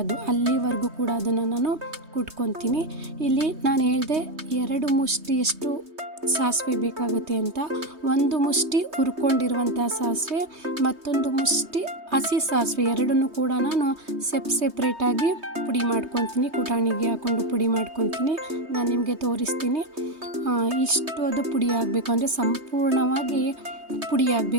ಅಲ್ಲಿವರೆಗೂ ಕೂಡ ಅದನ್ನು ನಾನು ಕುಟ್ಕೊತೀನಿ. ಇಲ್ಲಿ ನಾನು ಹೇಳಿದೆ 2 ಮುಷ್ಟಿಯಷ್ಟು ಸಾಸಿವೆ ಬೇಕಾಗುತ್ತೆ ಅಂತ. 1 ಮುಷ್ಟಿ ಹುರ್ಕೊಂಡಿರುವಂಥ ಸಾಸಿವೆ, ಮತ್ತೊಂದು ಮುಷ್ಟಿ ಹಸಿ ಸಾಸಿವೆ, ಎರಡನ್ನೂ ಕೂಡ ನಾನು ಸೆಪ್ರೇಟಾಗಿ ಪುಡಿ ಮಾಡ್ಕೊತೀನಿ. ಕುಟಾಣಿಗೆ ಹಾಕ್ಕೊಂಡು ಪುಡಿ ಮಾಡ್ಕೊತೀನಿ. ನಾನು ನಿಮಗೆ ತೋರಿಸ್ತೀನಿ. ಇಷ್ಟು ಅದು ಪುಡಿ ಆಗಬೇಕು, ಅಂದರೆ ಸಂಪೂರ್ಣವಾಗಿ ಪುಡಿ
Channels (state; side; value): late; left; 3.2 ms